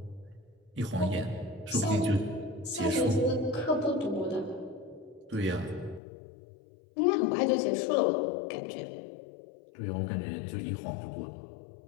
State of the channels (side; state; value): right; drops out; at 6.0 s